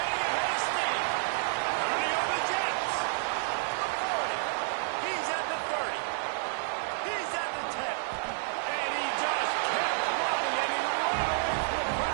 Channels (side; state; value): left; silent; 58 dB below the other